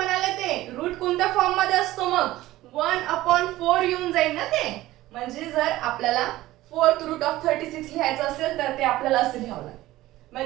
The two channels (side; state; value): left; quieter; 16.5 dB